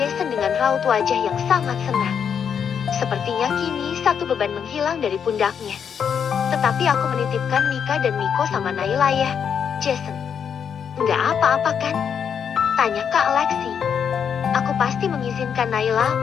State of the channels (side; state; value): right; quieter; 7.5 dB